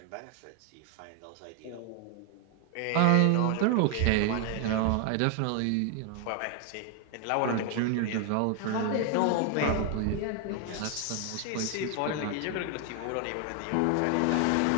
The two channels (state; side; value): different; both; correlation 0.00